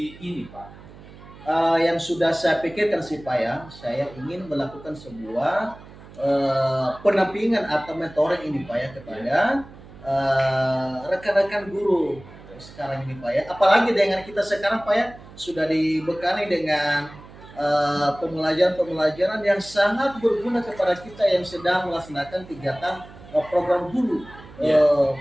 ini Pak? Yang sudah saya pikirkan sih Pak ya, saya ingin melakukan sebuah pendampingan atau mentoring ini Pak ya kepada rekan-rekan guru sekarang ini Pak ya. Apalagi dengan kita sekarang Pak ya sudah dibekali dengan pembelajaran yang sangat berguna kepada kita yang sedang melaksanakan kegiatan program guru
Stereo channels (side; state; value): right; noise; hum, 19 dB below the sound